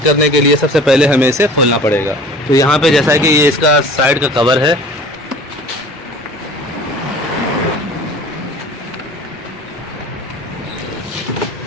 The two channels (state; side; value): normal; both; correlation 0.44